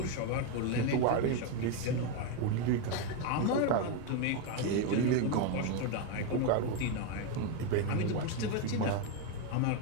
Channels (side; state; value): both; different; correlation 0.02